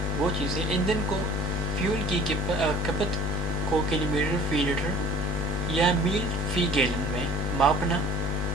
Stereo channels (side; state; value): both; normal; correlation 0.47